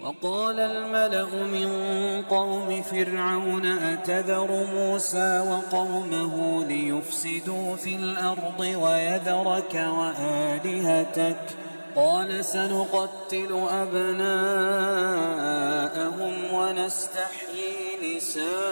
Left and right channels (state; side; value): inverted; both; correlation -1.00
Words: وقال الملأ من قوم فرعون أتذر موسى وقومه ليفسدوا في الأرض ويذرك وآلهتك قال سنقتل أبناءهم ونستحيي نساءهم